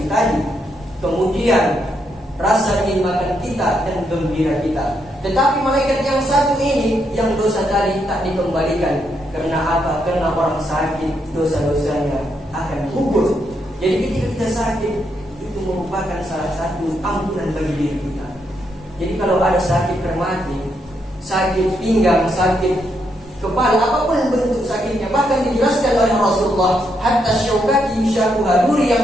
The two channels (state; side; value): normal; both; correlation 0.78